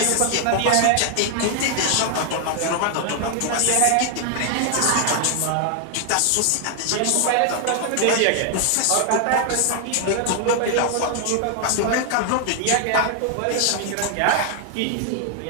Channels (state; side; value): different; both; correlation 0.00